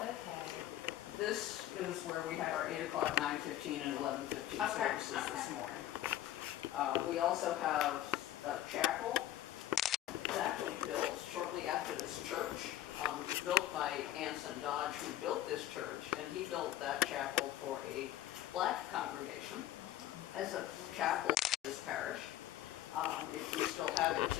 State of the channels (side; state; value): right; quieter; 13.2 dB